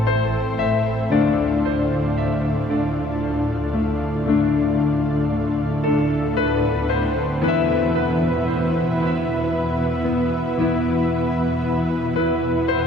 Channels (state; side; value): normal; both; correlation 0.62